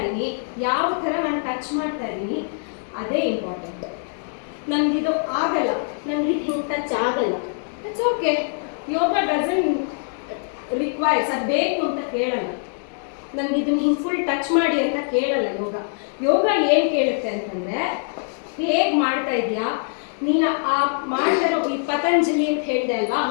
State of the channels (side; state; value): right; silent; digital silence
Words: ಯಾವ ಥರ ನಾನು ಟಚ್ ಮಾಡ್ತಾ ಇದ್ದೀನಿ, ಅದೇ ಇಂಪಾರ್ಟೆಂಟ್. ನನಗಿದು ಆಗಲ್ಲ, ನನಗೆ ಹಿಂಗೆ ಟಚ್ ಆಗಲ್ಲ, it's okay. Yoga doesn't requires, ಅದು ಬೇಕು ಅಂತ ಕೇಳಲ್ಲ. ನನಗೆ ಇದನ್ನು ಹಿಂಗೆ ಫುಲ್ ಟಚ್ ಮಾಡಿ ಅಂತ ಕೇಳಲ್ಲ ಯೋಗ. ಯೋಗ ಏನು ಕೇಳುತ್ತೆ ಅಂತಂದರೆ, ಹೇಗೆ ಮಾಡ್ತಾ ಇದೆಯಾ ನೀನು. ಆ ಮಾಡ್ತಾರೋ ಈ ಪತಂಜಲಿ ಅಂತ ಹೇಳಿದೆ ಅಲ್ವಾ,